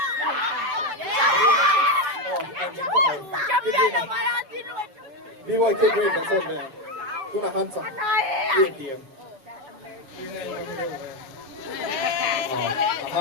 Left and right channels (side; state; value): left; late; 7.8 ms